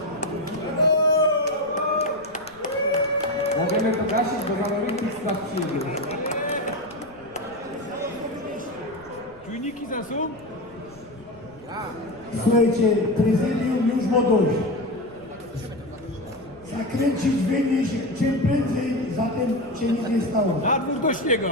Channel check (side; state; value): left; noise; rumble, 26 dB below the sound